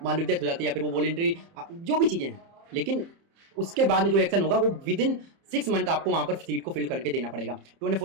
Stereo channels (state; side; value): late; left; 30 ms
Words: मान लो डेथ हो जाती है, या फिर वो वॉलंटरी, जो भी चीज़ें हैं, लेकिन उसके बाद में जो एक्शन होगा वो विद इन 6 मंथ आपको वहां पर सीट को फिल करके देना पड़ेगा।